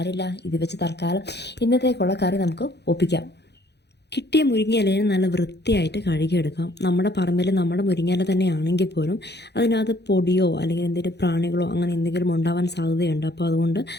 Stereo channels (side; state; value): right; late; 0.49 ms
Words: ഇത് വെച്ച് തൽക്കാലം ഇന്നത്തേക്കുള്ള കറി നമുക്ക് ഒപ്പിക്കാം. കിട്ടിയ മുരിങ്ങയിലയെ നല്ല വൃത്തിയായിട്ട് കഴുകിയെടുക്കാം. നമ്മുടെ പറമ്പിൽ നമ്മുടെ മുരിങ്ങയില തന്നെ ആണെങ്കിൽ പോലും അതിനകത്ത് പൊടിയോ അല്ലെങ്കിൽ എന്തെങ്കിലും പ്രാണികളോ അങ്ങനെ എന്തെങ്കിലും ഉണ്ടാവാൻ സാധ്യതയുണ്ട്. അപ്പോൾ അതുകൊണ്ട്